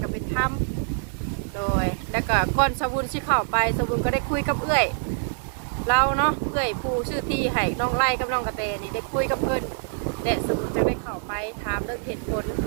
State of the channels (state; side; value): silent; left; digital silence